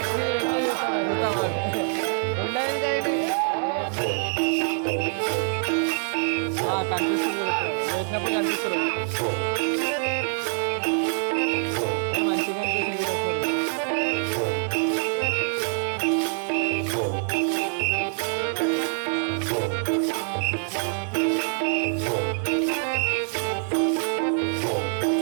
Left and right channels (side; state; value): left; silent; 62 dB below the other